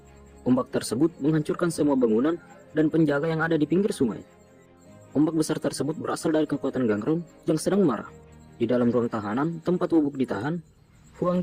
Ombak tersebut menghancurkan semua bangunan dan penjaga yang ada di pinggir sungai. Ombak besar tersebut berasal dari kekuatan Gangrung yang sedang marah. Di dalam ruang tahanan, tempat Woo-buk ditahan, Huang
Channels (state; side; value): identical; both; correlation 1.00